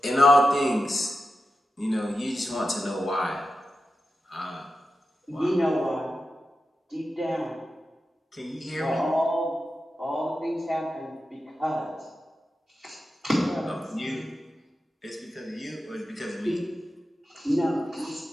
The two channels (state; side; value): normal; both; correlation 0.90